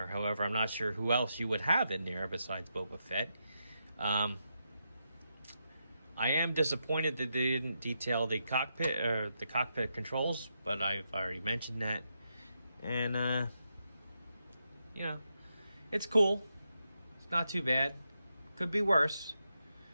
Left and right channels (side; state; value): both; inverted; correlation -0.84